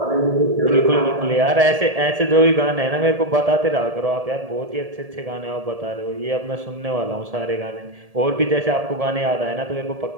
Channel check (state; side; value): late; left; 1.7 ms